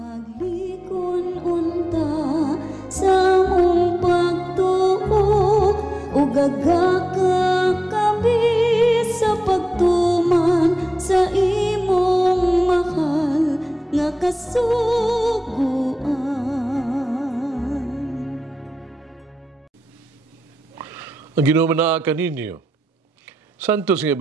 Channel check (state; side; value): normal; both; correlation 0.93